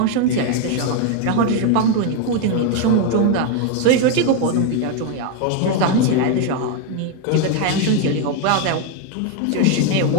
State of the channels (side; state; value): both; different; correlation 0.01